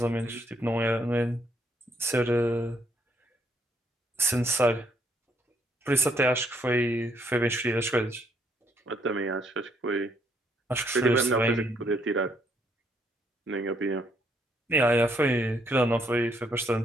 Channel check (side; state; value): both; normal; correlation 0.71